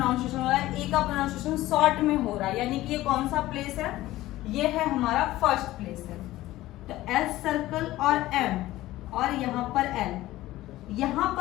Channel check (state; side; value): quieter; right; 16.3 dB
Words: हो रहा है, ए का प्रोनाउंसिएशन शॉर्ट में हो रहा है, यानी कि ये कौन सा प्लेस है, ये है हमारा फर्स्ट प्लेस है। तो S सर्कल और M और यहाँ पर L, यहाँ